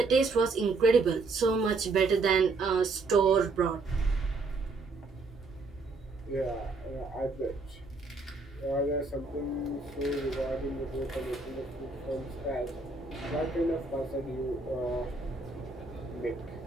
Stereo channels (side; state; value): left; quieter; 3.7 dB